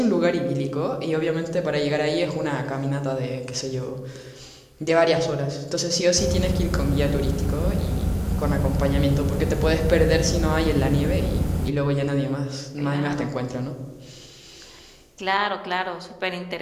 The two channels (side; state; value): both; identical; correlation 1.00